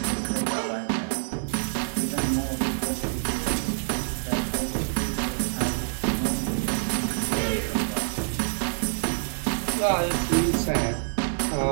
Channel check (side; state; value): left; silent; digital silence